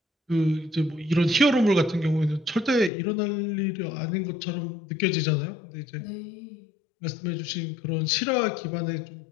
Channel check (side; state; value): right; drops out; at 2.9 s